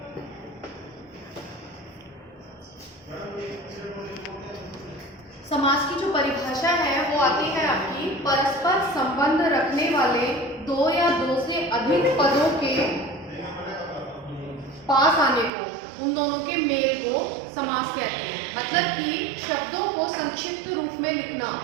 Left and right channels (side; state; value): left; drops out; at 15.5 s